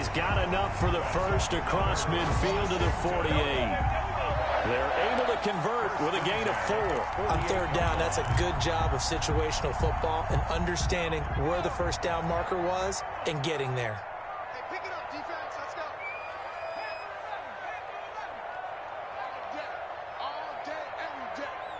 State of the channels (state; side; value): identical; both; correlation 1.00